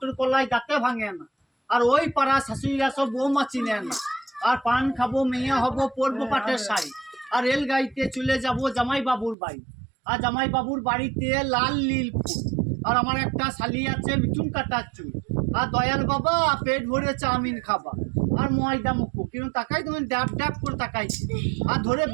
কলাই দাঁতে ভাঙে না আর ওই পাড়া শাশুড়িরা সব বৌমা চিনে না আর পান খাবো মেয়ে হবো পরবো পাটের শাড়ি আর রেল গাড়িতে চলে যাবো জামাই বাবুর বাড়ি আর জামাই বাবুর বাড়িতে লাল নীল ফুল আর আমার একটা শালি আছে মিঠুন কাটার চুল আর দয়াল বাবা পেট ভরে চাউমিন খাবা আর ময়দা মুখো কিন্তু তাকাই তুমি ড্যাপ ড্যাপ করে তাকাইছি আর ধরে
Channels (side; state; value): left; drops out; at 9.3 s